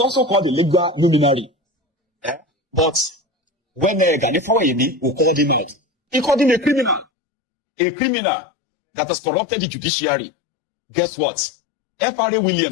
called a legal luminary. But when Gani Faweyimi called him out, he called him a criminal. A criminal that has corrupted the judiciary. Guess what? F.R.A.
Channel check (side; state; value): right; drops out; at 7.1 s